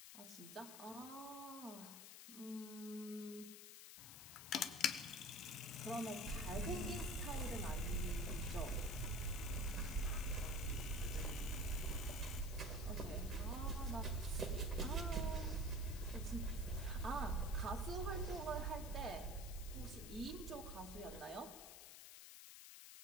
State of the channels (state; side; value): noise; left; hiss, 12 dB below the sound